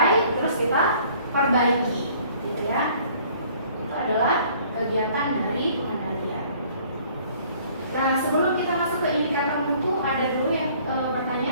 terus kita perbaiki gitu ya. Itu adalah kegiatan dari pengendalian. Nah, sebelum kita masuk ke indikator mutu, ada dulu yang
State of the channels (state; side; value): inverted; both; correlation -0.56